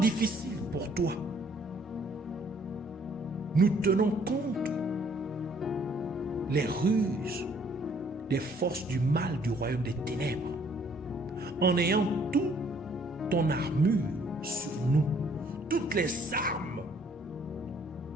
pour toi. Nous tenons compte les ruses des forces du mal du royaume des ténèbres, en ayant toute ton armure sur nous, toutes les armes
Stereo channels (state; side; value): normal; both; correlation 0.62